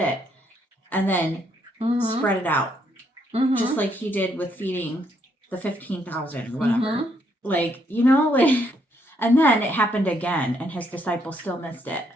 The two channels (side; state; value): both; normal; correlation 0.73